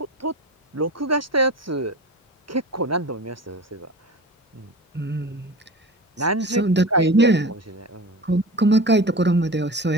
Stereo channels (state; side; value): normal; both; correlation 0.33